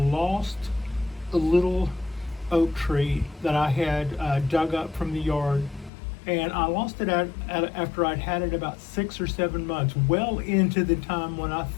a little oak tree that I had dug up from the yard, and I lost it after I'd had it about 6 or 7 months, well into the time when I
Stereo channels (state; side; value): drops out; right; at 5.9 s